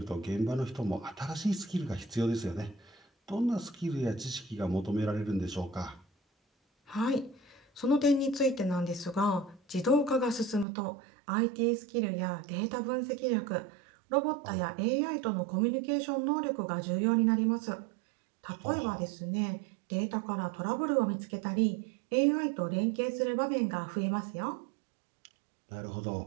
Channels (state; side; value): drops out; left; at 10.7 s